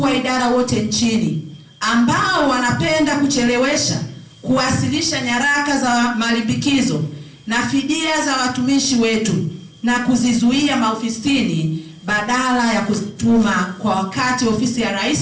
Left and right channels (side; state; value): both; identical; correlation 1.00